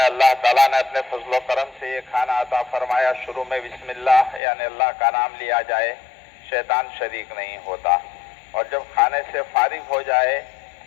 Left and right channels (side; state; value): right; drops out; at 4.4 s